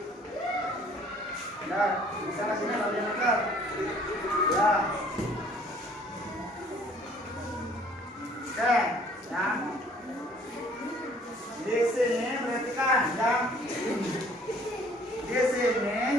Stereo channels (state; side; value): normal; both; correlation 0.56